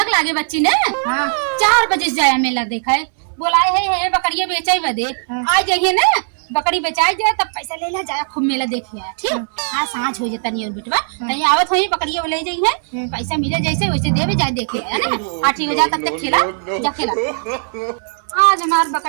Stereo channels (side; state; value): left; silent; digital silence